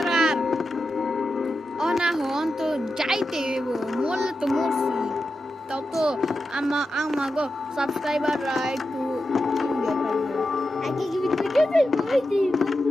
অনাহন তো যাইতে হইব মরলে তো মরছি তাও তো আমাগো সাবস্ক্রাইবাররা একটু আগে কি ভিডিও আমি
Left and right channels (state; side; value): normal; both; correlation 0.90